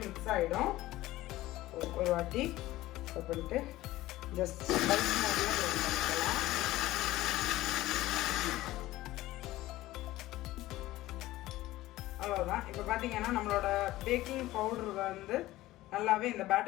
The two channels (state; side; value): quieter; right; 16.8 dB